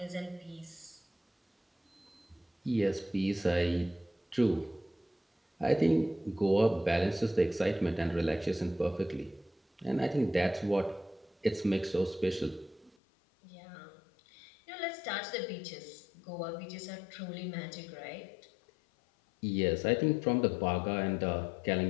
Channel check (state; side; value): drops out; right; at 13.0 s